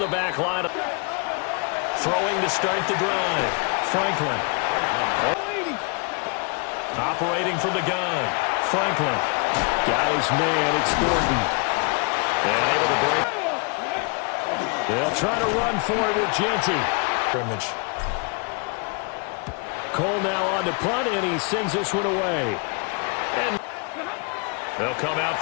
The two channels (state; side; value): quieter; right; 33.7 dB